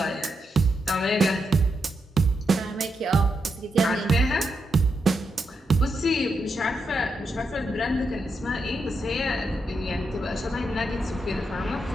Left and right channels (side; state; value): both; normal; correlation 0.84